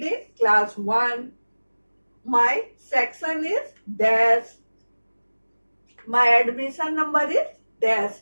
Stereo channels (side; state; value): both; inverted; correlation -1.00